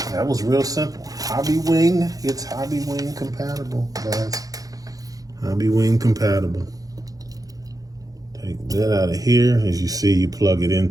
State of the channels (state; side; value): late; left; 0.17 ms